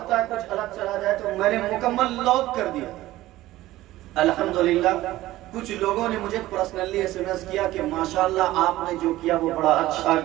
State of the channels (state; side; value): quieter; left; 16.2 dB